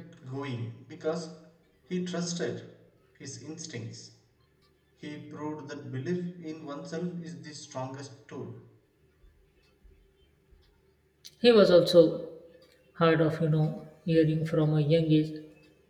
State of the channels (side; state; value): both; identical; correlation 1.00